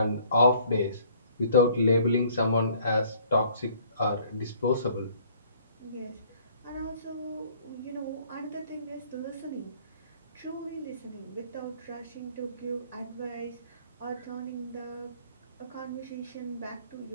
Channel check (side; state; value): both; inverted; correlation -0.58